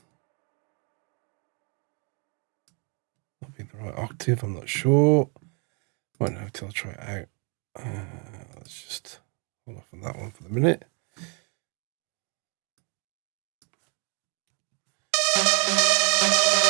be the right octave, I'm not sure. Won't know until I try it out. Let's just hold off on that one for the minute.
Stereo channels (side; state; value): left; quieter; 36.5 dB